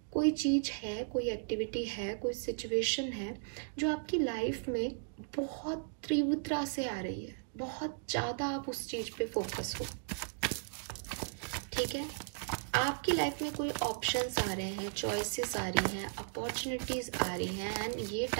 कोई चीज़ है, कोई एक्टिविटी है, कोई सिचुएशन है जो आपकी लाइफ में बहुत तीव्रता से आ रही है, बहुत ज़्यादा आप उस चीज़ पे फोकस हो, ठीक है। आपकी लाइफ में कोई ऑप्शंस आ रहे हैं, चॉइसेस आ रही हैं, अपॉर्चुनिटीज़ आ रही हैं, एंड ये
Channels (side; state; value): left; silent; digital silence